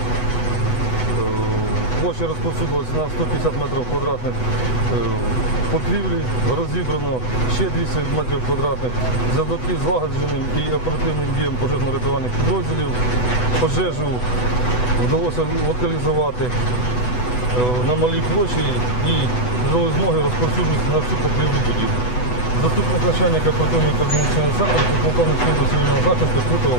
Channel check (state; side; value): late; right; 8.1 ms